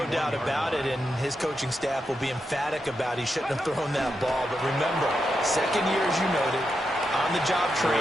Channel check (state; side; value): normal; both; correlation 0.86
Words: doubt about it, and his coaching staff will be emphatic about he shouldn't have thrown that ball. But remember, second year, as you noted, on-the-job